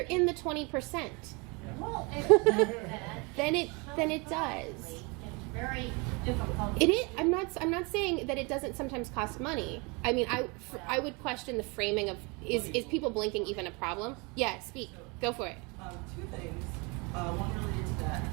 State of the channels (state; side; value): quieter; left; 29.2 dB